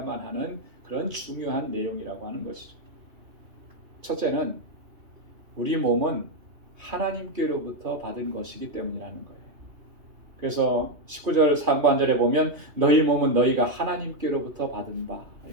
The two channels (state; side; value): late; left; 2.8 ms